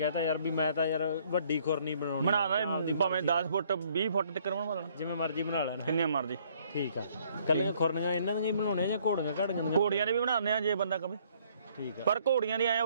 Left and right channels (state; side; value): inverted; both; correlation -0.64